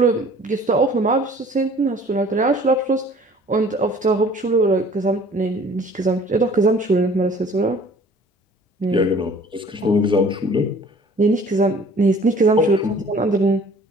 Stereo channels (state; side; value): normal; both; correlation 0.51